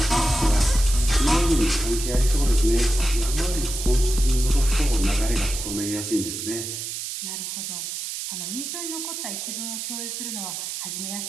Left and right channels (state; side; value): noise; right; hiss, 6 dB below the sound